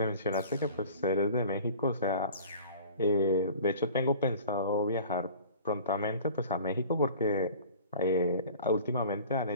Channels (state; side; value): inverted; both; correlation -0.44